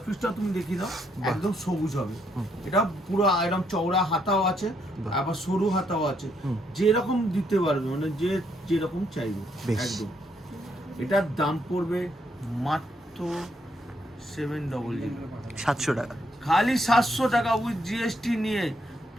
পিসটা তুমি দেখিয়ে দাও, একদম সবুজ হবে। এটা পুরো একদম চওড়া হাতাও আছে, বাহ। আবার সরু হাতাও আছে, হুম। যেরকম দিতে পারবে, মানে যে যেরকম চাইবে বেশ। একদম। এটার দাম পড়বে মাত্র 700, 700 টাকা। খালি 700 টাকা উইথ জিএসটি নিয়ে,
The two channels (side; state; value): both; normal; correlation 0.74